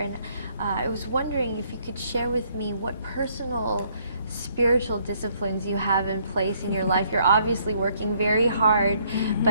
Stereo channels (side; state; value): both; inverted; correlation -0.67